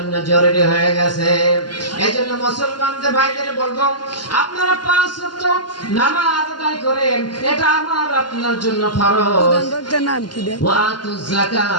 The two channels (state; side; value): late; right; 0.71 ms